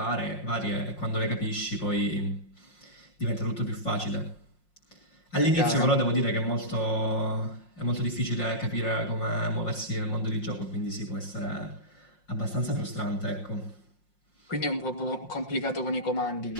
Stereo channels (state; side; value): late; right; 5.6 ms